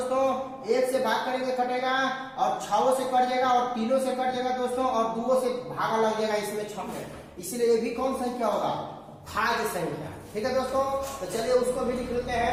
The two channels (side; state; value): both; identical; correlation 1.00